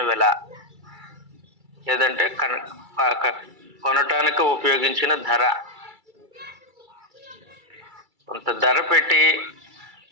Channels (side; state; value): left; late; 2.3 ms